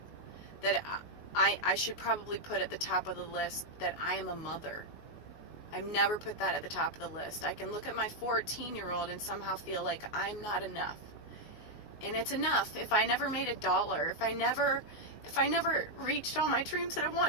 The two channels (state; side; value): late; right; 19 ms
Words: That I should probably put at the top of the list that I am a mother. I've never put that at the top of the list. I can look at my 14-year-old and somehow feel like I'm not enough. And it's enough if I never made $1, if I never reached all my dreams that I